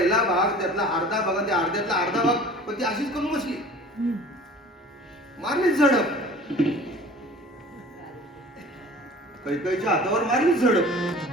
भाग, त्यातला अर्धा भाग, त्या अर्ध्यातला अर्धा भाग, पण ती अशीच करून बसली, मारलीच झडप. कैकेयीच्या हातावर मारलीच झडप.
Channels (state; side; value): normal; both; correlation 0.44